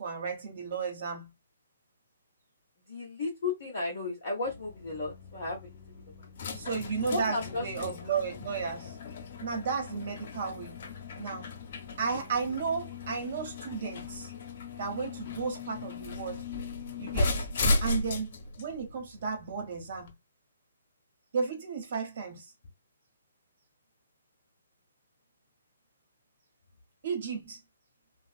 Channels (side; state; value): both; inverted; correlation -0.63